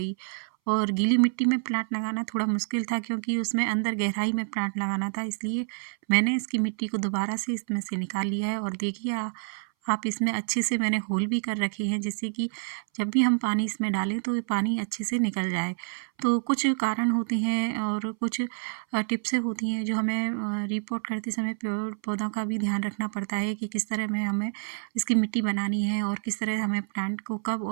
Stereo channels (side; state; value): left; silent; 59 dB below the other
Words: और गीली मिट्टी में प्लांट लगाना थोड़ा मुश्किल था, क्योंकि उसमें अंदर गहराई में प्लांट लगाना था। इसलिए मैंने इसकी मिट्टी को दोबारा से इसमें से निकाल लिया है और देखिए आप इसमें अच्छे से मैंने होल भी कर रखे हैं, जिससे कि जब भी हम पानी इसमें डालें तो ये पानी अच्छे से निकल जाए। तो कुछ कारण होते हैं और कुछ टिप्सें होती हैं जो हमें रिपोर्ट करते समय पेड़ पौधों का भी ध्यान रखना पड़ता है कि किस तरह में हमें इसकी मिट्टी बनानी है और किस तरह हमें प्लांट को कब